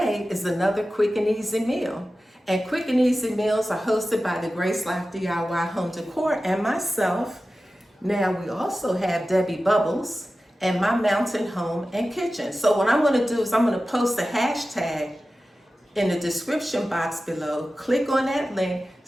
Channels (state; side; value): normal; both; correlation 0.94